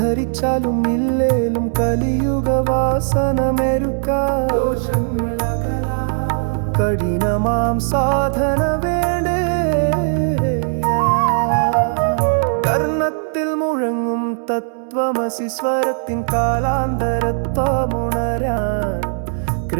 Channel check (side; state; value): left; silent; digital silence